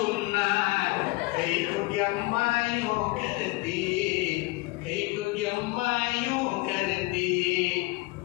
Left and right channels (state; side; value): quieter; right; 22.5 dB